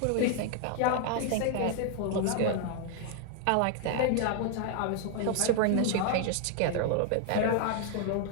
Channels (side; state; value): both; different; correlation 0.00